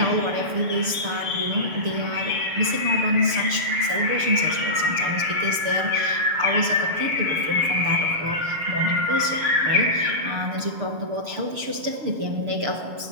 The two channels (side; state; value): left; late; 6.8 ms